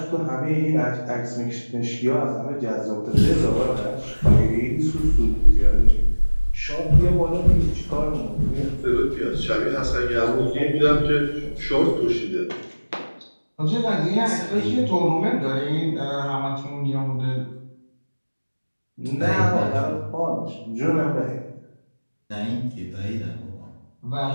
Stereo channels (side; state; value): both; inverted; correlation -1.00